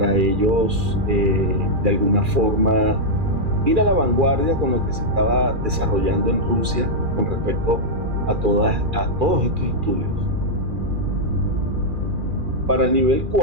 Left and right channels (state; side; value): late; left; 2.4 ms